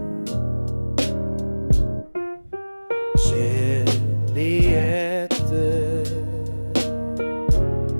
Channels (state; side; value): inverted; both; correlation -1.00